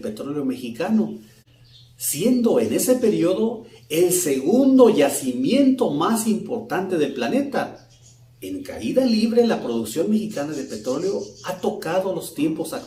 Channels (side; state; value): both; identical; correlation 1.00